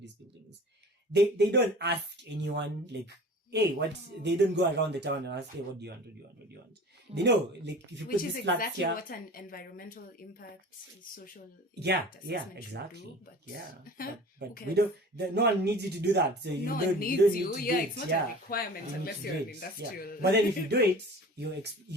these buildings. They don't ask anyone, like, hey, what? They don't go around the town and ask, hey, what do you want? They know, like, if you Which put is this flat exactly here, what an environmental impact, social yeah, assessment exactly. should do. But but okay. we don't. No one needs you to do that. So you no don't, one needs you. Don't you. need to Yeah, do it's it. not Yeah. a requirement You need unless to you're do an it. industrial. Yeah. But then if you do it,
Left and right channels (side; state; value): both; normal; correlation 0.41